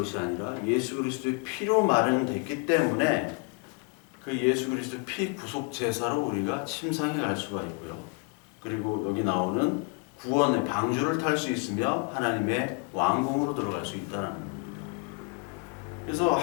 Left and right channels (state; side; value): quieter; right; 34.1 dB